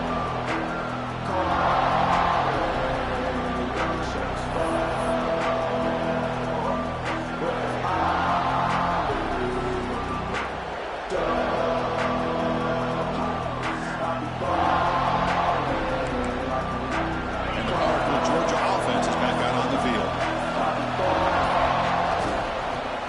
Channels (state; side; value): identical; both; correlation 1.00